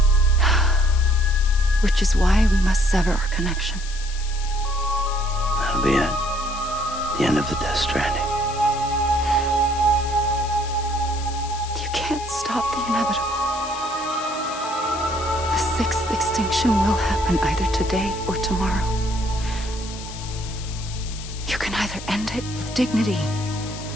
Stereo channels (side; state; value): left; noise; hiss, 13 dB below the sound